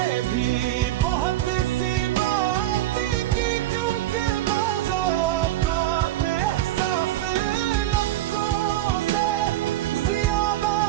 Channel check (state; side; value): quieter; left; 14.6 dB